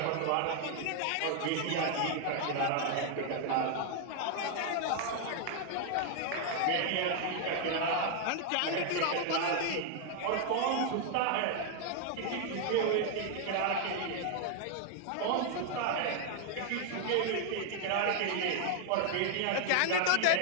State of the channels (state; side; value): different; both; correlation 0.00